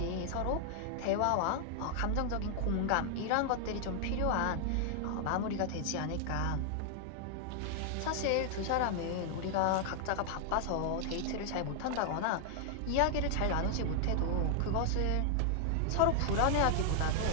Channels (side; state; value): both; different; correlation 0.00